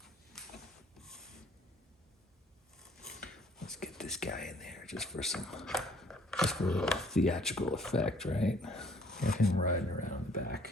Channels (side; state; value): both; normal; correlation 0.58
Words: Let's get this guy in there just for a little theatrical effect, right? Get him riding around the back.